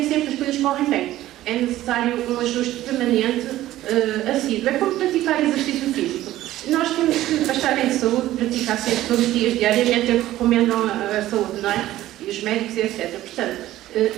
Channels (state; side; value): quieter; left; 14.7 dB